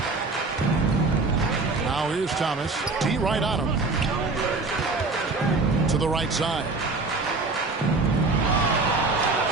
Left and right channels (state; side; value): quieter; left; 3.7 dB